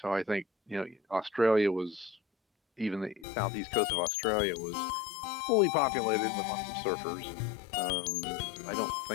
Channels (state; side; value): drops out; right; at 3.2 s